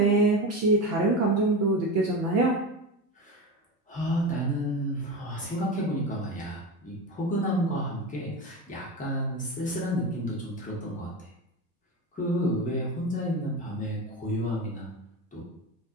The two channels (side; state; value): both; normal; correlation 0.22